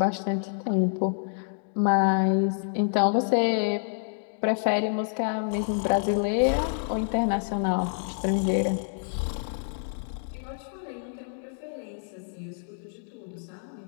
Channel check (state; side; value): silent; right; digital silence